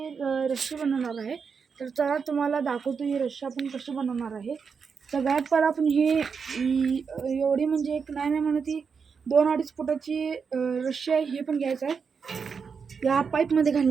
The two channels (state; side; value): quieter; left; 5.9 dB